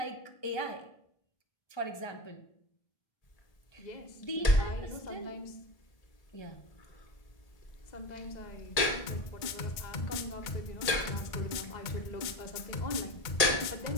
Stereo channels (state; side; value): late; right; 1.8 ms